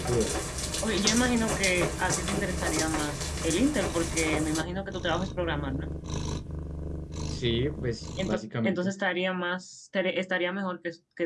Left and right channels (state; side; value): identical; both; correlation 1.00